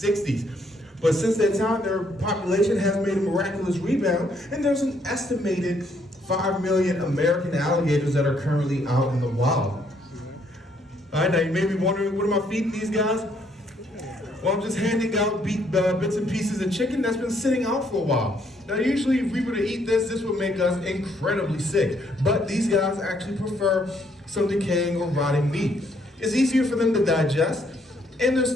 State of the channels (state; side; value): normal; both; correlation 0.69